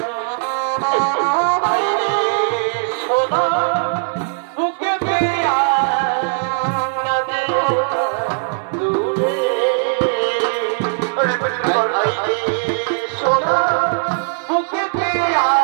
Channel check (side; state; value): left; silent; digital silence